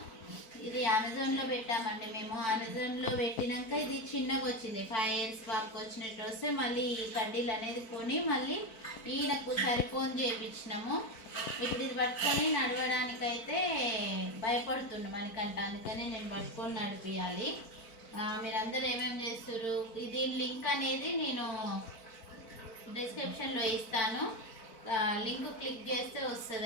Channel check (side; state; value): right; late; 4.5 ms